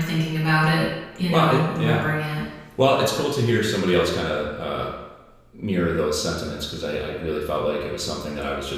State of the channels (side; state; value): both; identical; correlation 1.00